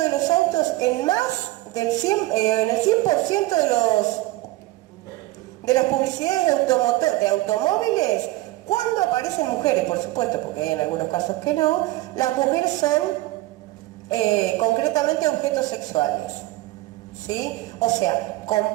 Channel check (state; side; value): quieter; left; 18.2 dB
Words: los autos en más del 100%, en el 100% de las publicidades de automóviles, cuando aparecen mujeres, por supuesto, porque hay en algunos casos que no, las mujeres son concretamente objetos sexuales. ¿Sí? O sea,